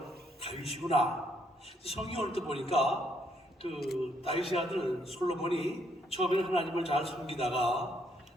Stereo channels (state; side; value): normal; both; correlation 0.72